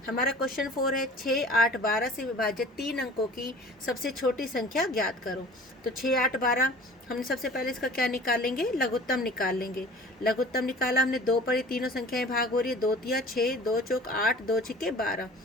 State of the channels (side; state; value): both; normal; correlation 0.44